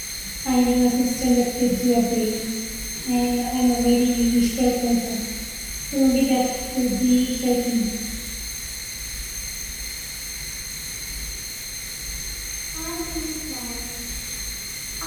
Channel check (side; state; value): both; identical; correlation 1.00